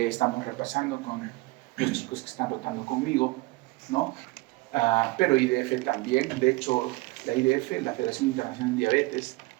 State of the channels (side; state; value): left; quieter; 22.2 dB